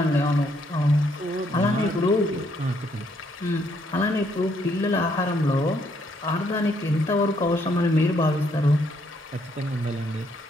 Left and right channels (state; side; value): normal; both; correlation 0.71